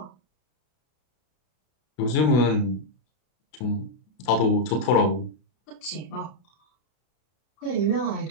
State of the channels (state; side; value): late; right; 32 ms